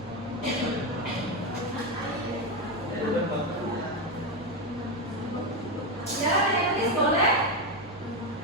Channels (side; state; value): both; normal; correlation 0.10